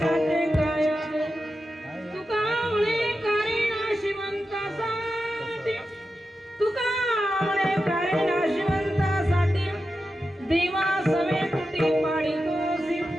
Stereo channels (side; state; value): both; normal; correlation 0.90